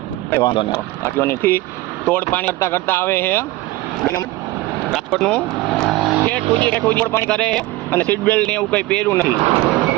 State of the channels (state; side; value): quieter; left; 18.3 dB